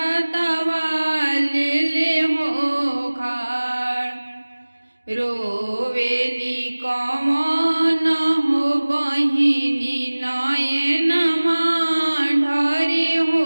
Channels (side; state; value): both; inverted; correlation -1.00